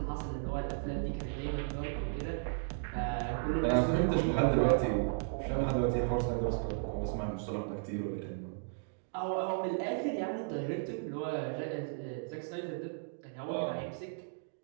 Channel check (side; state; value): left; silent; digital silence